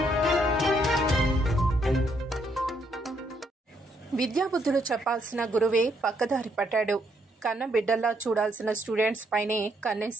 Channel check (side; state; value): both; normal; correlation 0.73